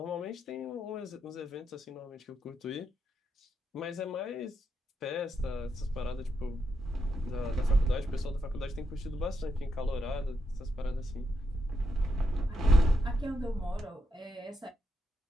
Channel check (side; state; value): both; normal; correlation 0.82